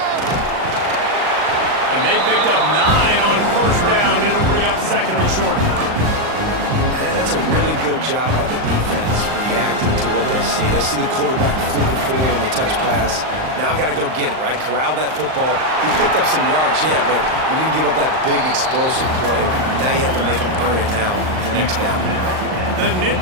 And they picked up 9 on first down. It'll bring up second and short. That's a really good job by the defense, reacting to what they see. They see the quarterback flipping forward on the touch pass. Now I got to go get it, right? Corral that football. He picked up some yards, yeah, but you didn't give up that big explosive play. Now you have to make him earn it now on the next down. The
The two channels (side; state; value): left; late; 38 ms